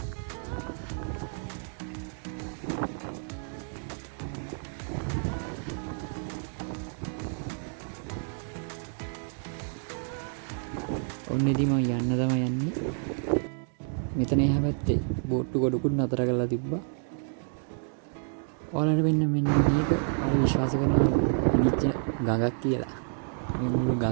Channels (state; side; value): silent; left; 58 dB below the other